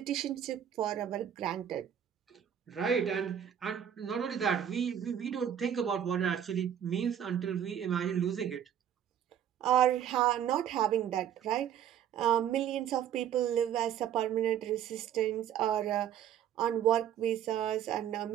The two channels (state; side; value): quieter; left; 9.6 dB